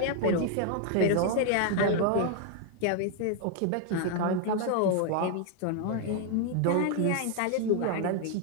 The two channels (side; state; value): both; different; correlation 0.01